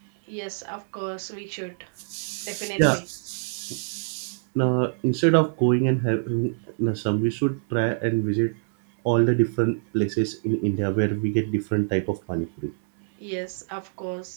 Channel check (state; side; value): silent; left; 58 dB below the other